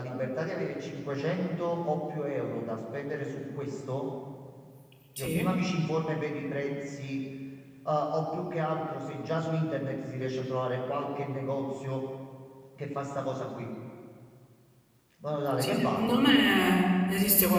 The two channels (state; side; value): identical; both; correlation 1.00